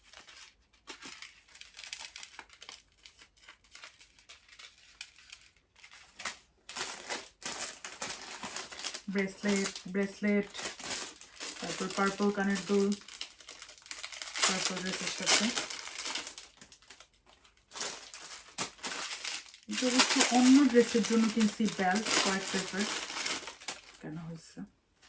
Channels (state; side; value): identical; both; correlation 1.00